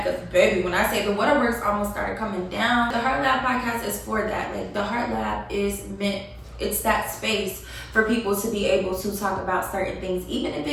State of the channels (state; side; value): identical; both; correlation 1.00